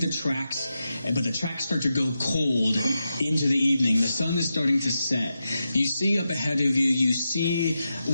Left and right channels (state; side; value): inverted; both; correlation -0.89